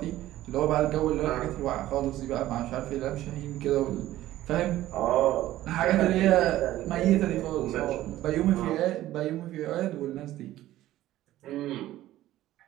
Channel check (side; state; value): left; quieter; 14.6 dB